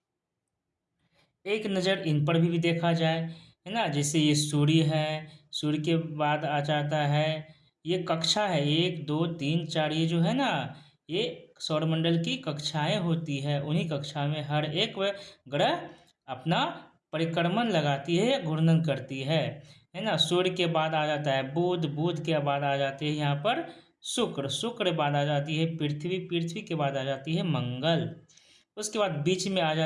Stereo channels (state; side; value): identical; both; correlation 1.00